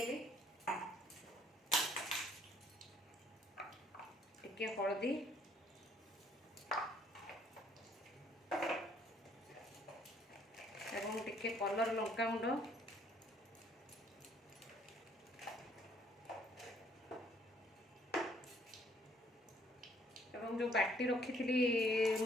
टिके हळदी एवं टिके कलर लंका गुंड एवं जो बाटी रखी थी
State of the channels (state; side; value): normal; both; correlation 0.63